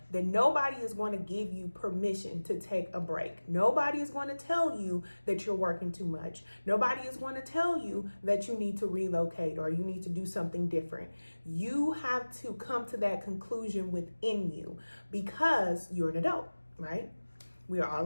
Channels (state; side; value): inverted; both; correlation -1.00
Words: that nobody is going to give you permission to take a break. Nobody is going to tell you that you're working too much. Nobody is going to tell you that you need to relocate or you need to do something different. You have to come to that conclusion within you because you're an adult, right? We are